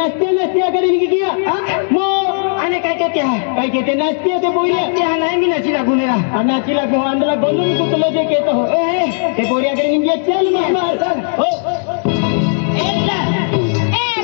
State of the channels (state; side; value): silent; right; digital silence